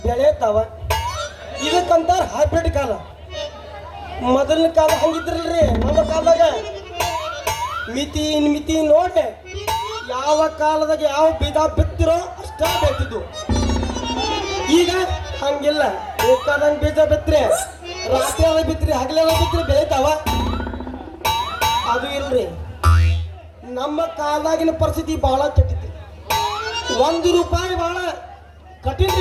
ಬೆಳೆತಾವ ಇದಕ್ಕಂತಾರ ಹೈಬ್ರಿಡ್ ಕಾಲ ಮೊದಲಿನ ಕಾಲ ಹಂಗಿದ್ರಲ್ರಿ ನಮ್ಮ ಕಾಲದಾಗ ಮಿತಿ ನೋಡಿ ಯಾವ ಕಾಲದಾಗ ಯಾವ ಬೀಜ ಬಿತ್ತಿರೋ ಅಷ್ಟ ಬೆಳ್ತಿದ್ವು ಈಗ ಹಂಗಿಲ್ಲ ಬೇಕಾದಂಗ್ ಬೀಜ ಬಿತ್ರಿ ರಾತ್ರಿ ಅದ ಬಿತ್ರಿ ಹಗಲೆಲ್ಲ ಬಿತ್ರಿ ಬೆಳಿತಾವ ಅದು ಇಲ್ರಿ ನಮ್ಮ ಕಾಲದಾಗಿನ ಪರಿಸ್ಥಿತಿ ಬಹಳ ಕೆಟ್ಟಿತ್ತು ₹1 ಬಹಳ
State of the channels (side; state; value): both; identical; correlation 1.00